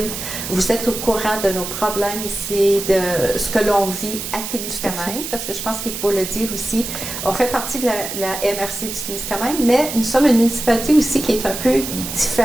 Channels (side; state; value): right; noise; hiss, 6 dB below the sound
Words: vous êtes au courant de nos problèmes ici, de ce que l'on vit à Témiscamingue, parce que je pense qu'il faut le dire aussi, on fait partie de la MRC du Témiscamingue, mais nous sommes une municipalité aussi qui est un peu